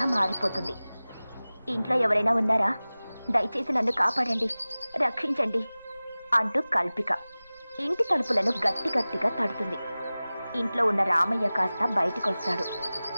మారిపోతుంది. ఇంట్లో ఎవరైనా ఉన్నారా? దయచేసి నన్ను కాపాడండి, రక్షించండి అంటూ కల్పిక ఇంటి తలుపులను గట్టి గట్టిగా తడుతుంది. ఇంట్లో ఉన్న రామయ్య కాస్త బయటికొస్తాడు.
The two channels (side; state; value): both; inverted; correlation -0.98